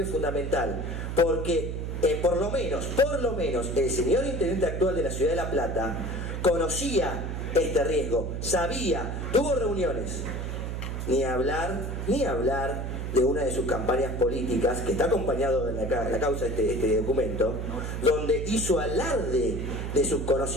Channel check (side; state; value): right; noise; hum, 4 dB below the sound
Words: es fundamental? Porque por lo menos el señor intendente actual de la ciudad de La Plata conocía este riesgo, sabía, tuvo reuniones. Ni hablar de una de sus campañas políticas, que está acompañado en la causa de este documento, donde hizo alarde de sus